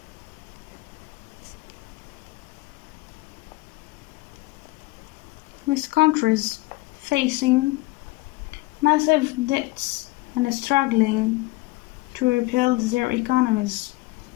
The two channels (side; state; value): right; quieter; 21.4 dB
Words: facing massive debts and struggling to rebuild their economies.